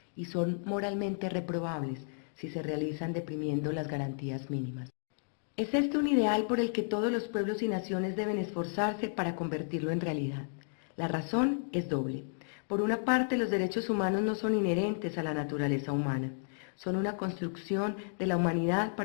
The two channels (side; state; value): right; silent; digital silence